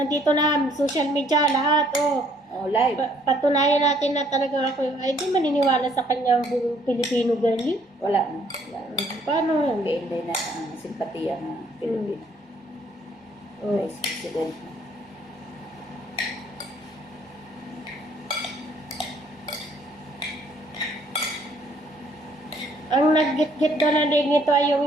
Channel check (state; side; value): normal; both; correlation 0.63